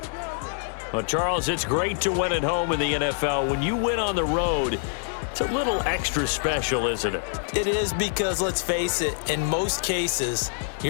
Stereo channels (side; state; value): right; silent; digital silence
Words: Well, Charles, it's great to win at home in the NFL. When you win on the road, it's a little extra special, isn't it? It is, because let's face it, in most cases,